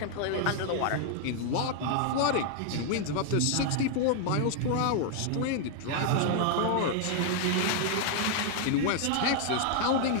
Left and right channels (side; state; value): both; different; correlation 0.00